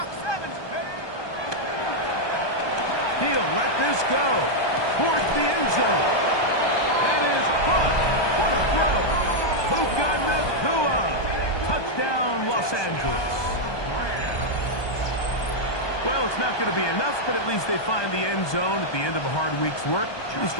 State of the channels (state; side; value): late; right; 1.2 ms